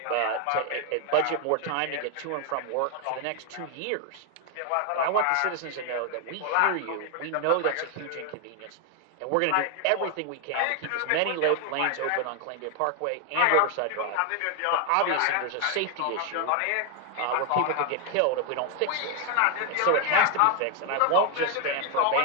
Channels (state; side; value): different; both; correlation 0.00